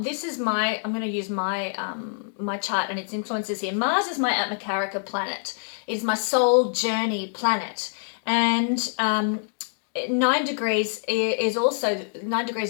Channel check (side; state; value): right; silent; digital silence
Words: is I'm going to use my my chart and its influences here. Mars is my Atmakarika planet. It is my soul journey planet. And 9 degrees is also